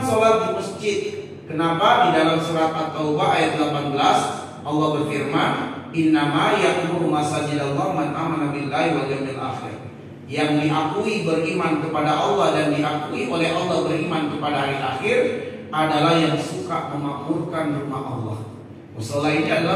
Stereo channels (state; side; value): identical; both; correlation 1.00